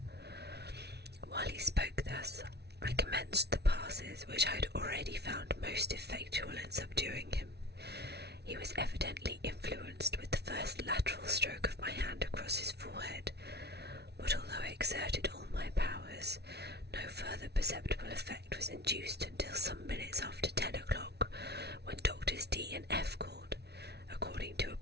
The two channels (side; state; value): left; late; 0.49 ms